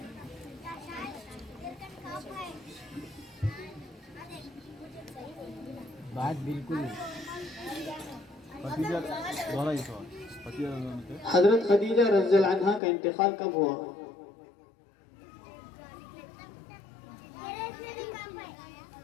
बात बिल्कुल हजरत खदीजा रज़ियल्लाहु अन्हा का इंतकाल कब हुआ।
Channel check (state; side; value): drops out; right; at 12.8 s